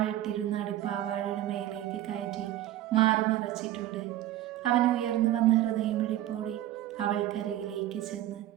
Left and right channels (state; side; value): quieter; left; 13.8 dB